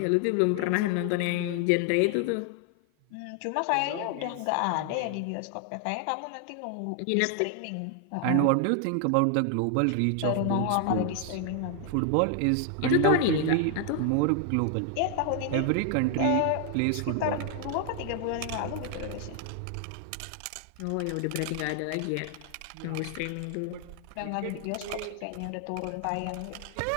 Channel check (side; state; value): both; different; correlation 0.00